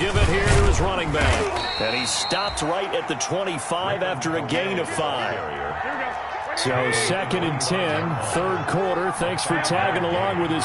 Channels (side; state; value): both; identical; correlation 1.00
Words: it here to his running back. And he stopped right at the 25 after a gain of 5. So 2nd and 10, third quarter. Thanks for tagging along with